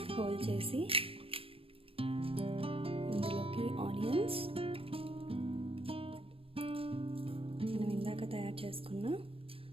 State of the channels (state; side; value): late; left; 0.27 ms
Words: హోల్ చేసి ఇందులోకి ఆనియన్స్, మనం ఇందాక తయారు చేసుకున్న